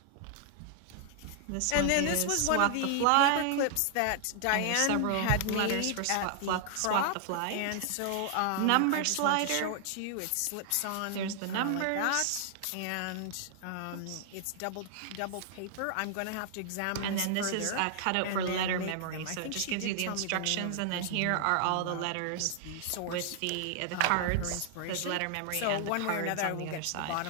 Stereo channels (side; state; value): both; different; correlation 0.00